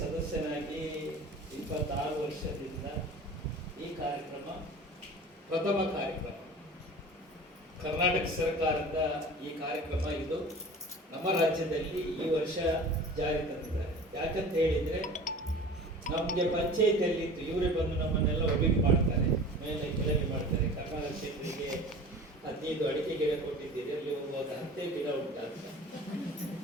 26 ವರ್ಷದಿಂದ ಈ ಕಾರ್ಯಕ್ರಮ ಪ್ರಥಮ ಕಾರ್ಯಕ್ರಮ. ಕರ್ನಾಟಕ ಸರ್ಕಾರದ ಈ ಕಾರ್ಯಕ್ರಮ ಇದು ನಮ್ಮ ರಾಜ್ಯದಲ್ಲಿ ಈ ವರ್ಷ ಜಾರಿ ತಂದಿದ್ದಾರೆ. ಯಾಕಂತ ಹೇಳಿದ್ರೆ ನಮಗೆ ಪಂಚಾಯತಿಯಲ್ಲಿ ಇತ್ತು, ಇವರೇ ಬಂದು ನಮ್ಮನ್ನೆಲ್ಲ ಒಬ್ಬಿಗೆ ಮಾಡ್ತಾರೆ, ಮೇಲೆ ಕೆಳಗೆ ಮಾಡ್ತಾರೆ. ಕರ್ನಾಟಕ ಕ್ಷೇತ್ರಕ್ಕೆ 15 ಅಡಿಕೆ ಗಿಡ ಕೊಟ್ಟಿದ್ದೀರಿ, ಅಲ್ಲಿ ಒಂದು 10 ಗಿಡ ಉಂಟಂತ.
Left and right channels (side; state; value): both; normal; correlation 0.39